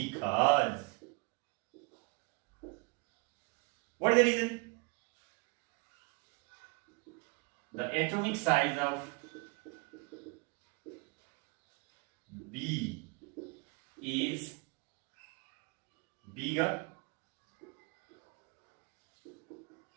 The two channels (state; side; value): quieter; left; 29.8 dB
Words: what is the reason? The atomic size of B is bigger